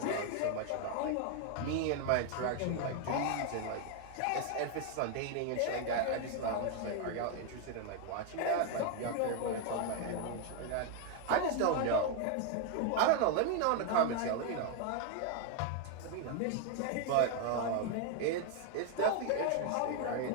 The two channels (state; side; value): different; both; correlation 0.01